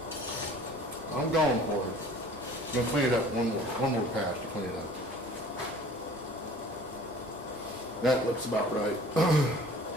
I'm going for it. I'm gonna clean it up one more pass to clean it up. That looks about right.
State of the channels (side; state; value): both; normal; correlation 0.48